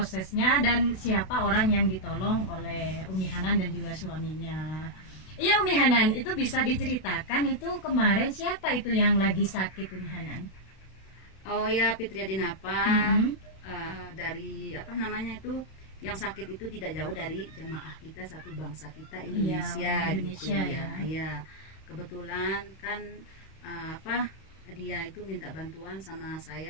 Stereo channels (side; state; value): right; late; 32 ms